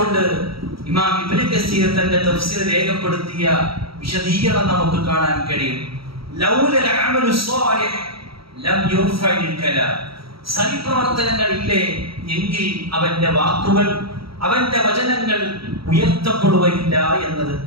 ഇമാം ഇബ്നു കസീർ തന്റെ തഫ്സീർ രേഖപ്പെടുത്തിയ വിശദീകരണം നമുക്ക് കാണാൻ കഴിയും. ലൗലൽ അമലു സ്വാലിഹ് ലം യുർഫഇൽ കലാം. സൽപ്രവർത്തനങ്ങൾ ഇല്ലേ എങ്കിൽ അവന്റെ വാക്കുകൾ, അവന്റെ വചനങ്ങൾ ഉയർത്തപ്പെടുകയില്ല എന്നത്.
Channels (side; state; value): left; late; 0.75 ms